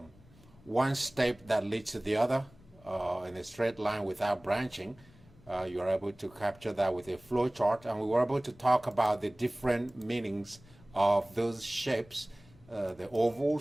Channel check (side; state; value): left; noise; rumble, 25 dB below the sound